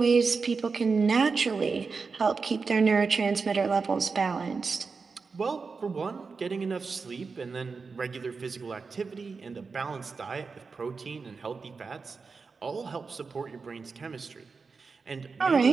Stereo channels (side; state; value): left; quieter; 4.8 dB